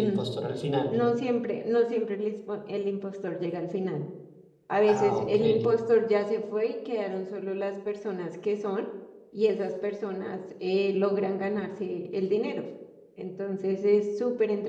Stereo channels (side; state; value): both; identical; correlation 1.00